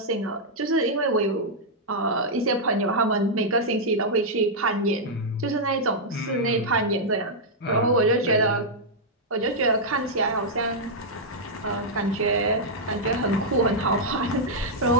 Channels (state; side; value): normal; both; correlation -0.06